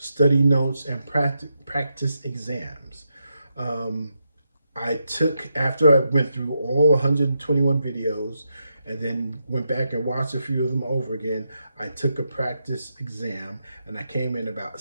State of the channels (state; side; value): inverted; both; correlation -0.84